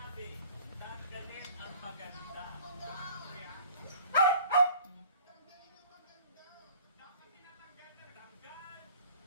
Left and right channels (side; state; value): both; inverted; correlation -0.49